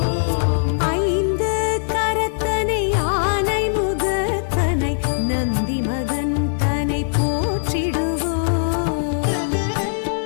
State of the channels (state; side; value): silent; right; digital silence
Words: ஐந்து கரத்தனை ஆனை முகத்தனை நந்தி மகன் தனை போற்றிடுவோம்.